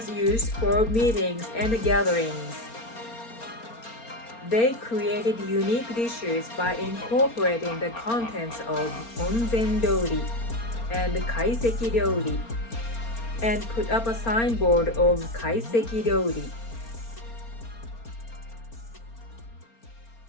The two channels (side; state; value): right; late; 4.3 ms